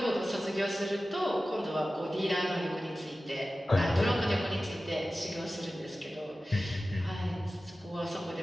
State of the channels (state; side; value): normal; both; correlation 0.95